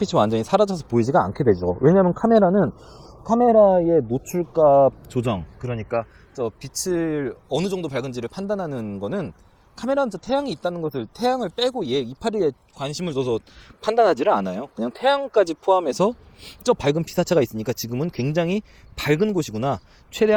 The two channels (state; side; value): identical; both; correlation 1.00